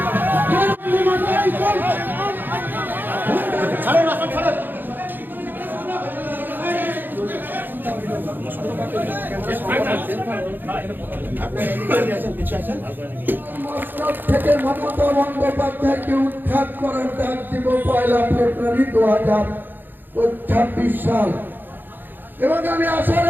থেকে মমতা বন্দ্যোপাধ্যায়কে উৎখাত করার ডাক দিব 1 ফেব্রুয়ারি 2026 সাল। এবং আমি আশা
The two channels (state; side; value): late; left; 0.092 ms